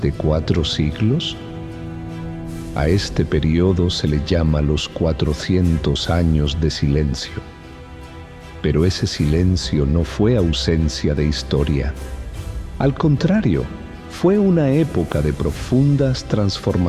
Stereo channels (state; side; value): identical; both; correlation 1.00